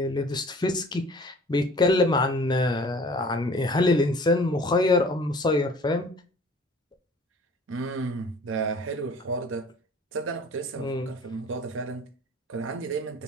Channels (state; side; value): normal; both; correlation 0.48